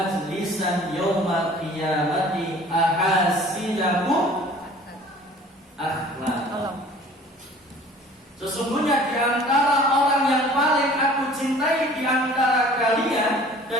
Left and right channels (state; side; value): normal; both; correlation 0.48